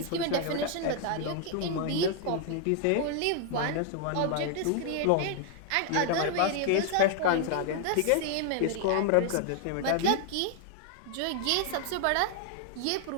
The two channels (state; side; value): different; both; correlation 0.00